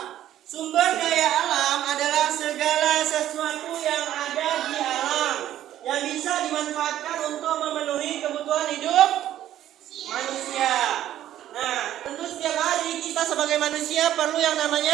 Sumber daya alam adalah segala sesuatu yang ada di alam yang bisa dimanfaatkan untuk memenuhi kebutuhan hidup manusia. Nah, tentu setiap hari kita sebagai manusia perlu yang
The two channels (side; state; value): left; quieter; 12.3 dB